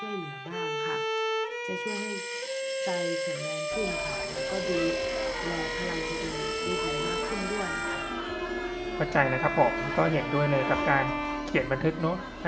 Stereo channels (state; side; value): identical; both; correlation 1.00